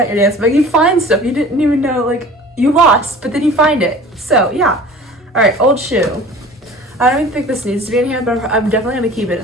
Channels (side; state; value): both; normal; correlation 0.43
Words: your dance bag. You find stuff you didn't even know, like, you lost, but then you find it. So, yeah. All right, old shoe. I don't even think this needs to be in here, but I'm definitely gonna keep it